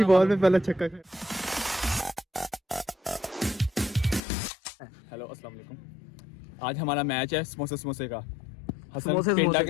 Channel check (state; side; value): drops out; right; at 4.2 s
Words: बॉल में पहला छक्का। हेलो अस्सलाम वालेकुम। आज हमारा मैच है समोसे समोसे का। हसन समोसे पेंडा के